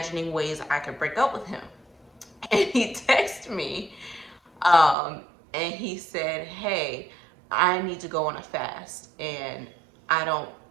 ways I could break up with him. And he texted me, and he said, "Hey, I need to go on a fast, and I don't,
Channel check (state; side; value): drops out; left; at 5.0 s